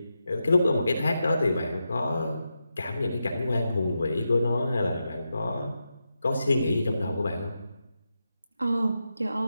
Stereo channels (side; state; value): both; inverted; correlation -0.88